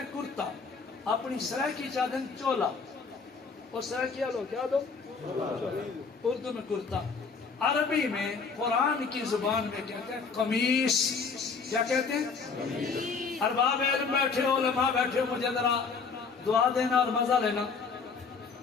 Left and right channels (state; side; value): quieter; right; 5.1 dB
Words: کرتا، اپنی سرائے کی چادر چولا، اور سرائے کیا لو کیا دو، اردو میں کرتا۔ عربی میں قرآن کی زبان میں کہتے ہیں قمیص۔ کیا کہتے ہیں؟ ارباب علم بیٹھے ہو، علماء بیٹھے ہو، مجھے ذرا دعا دینا اور مزہ لینا۔